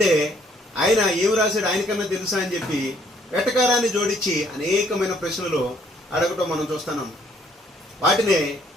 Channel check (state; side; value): normal; both; correlation 0.65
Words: ఆయన ఏమి రాశాడు ఆయనకన్నా తెలుసా అని చెప్పి వెటకారాన్ని జోడించి అనేకమైన ప్రశ్నలు అడగటం మనం చూస్తున్నాం. వాటినే